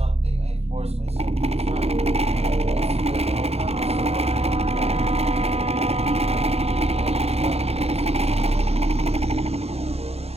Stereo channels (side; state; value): left; late; 0.30 ms